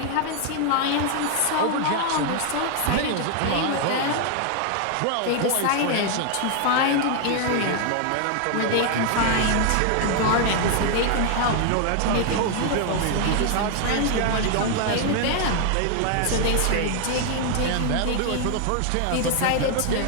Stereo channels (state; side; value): different; both; correlation 0.00